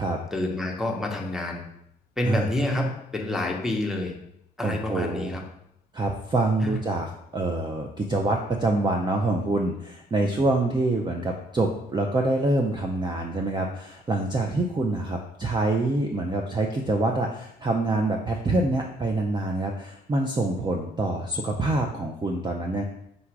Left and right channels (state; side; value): normal; both; correlation 0.69